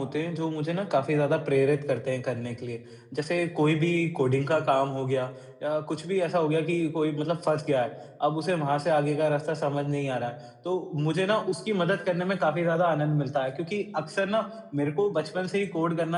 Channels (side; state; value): both; identical; correlation 1.00